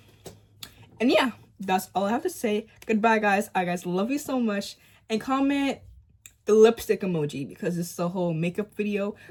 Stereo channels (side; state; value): both; identical; correlation 1.00